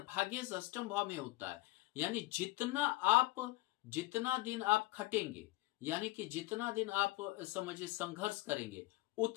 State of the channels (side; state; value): right; quieter; 20.4 dB